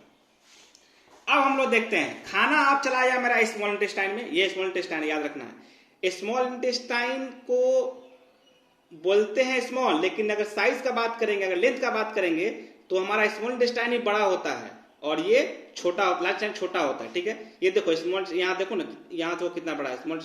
अब हम लोग देखते हैं, खाना आप चलाया मेरा स्मॉल इंटेस्टाइन में, ये स्मॉल इंटेस्टाइन याद रखना है। स्मॉल इंटेस्टाइन को बोलते हैं स्मॉल, लेकिन अगर साइज का बात करेंगे, अगर लेंथ का बात करेंगे तो हमारा स्मॉल इंटेस्टाइन ही बड़ा होता है और ये छोटा, लार्ज इंटेस्टाइन छोटा होता है। ठीक है, ये देखो स्मॉल, यहाँ देखो ना, यहाँ तो कितना बड़ा है स्मॉल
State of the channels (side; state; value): both; identical; correlation 1.00